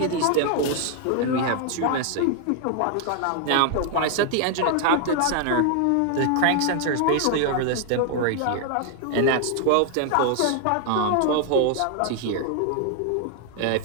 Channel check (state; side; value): different; both; correlation 0.00